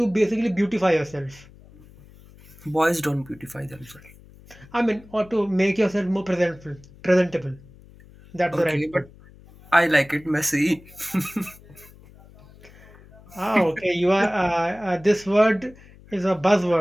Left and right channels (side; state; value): left; noise; hum, 23 dB below the sound